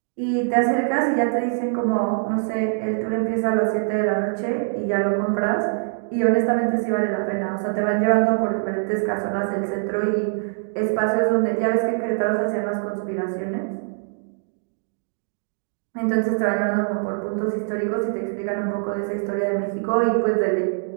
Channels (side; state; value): left; silent; 63 dB below the other